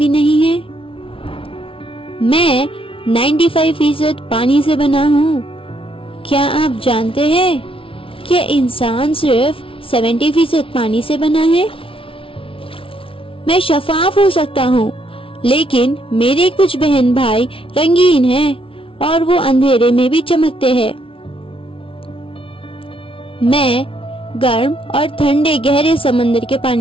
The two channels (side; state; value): right; late; 0.26 ms